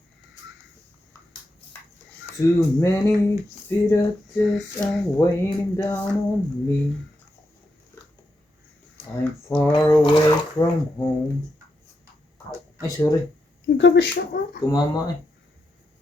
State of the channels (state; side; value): normal; both; correlation 0.84